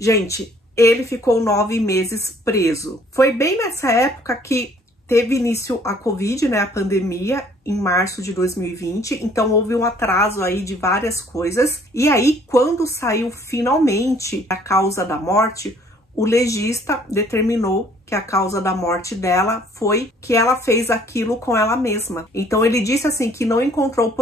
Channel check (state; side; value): normal; both; correlation 0.59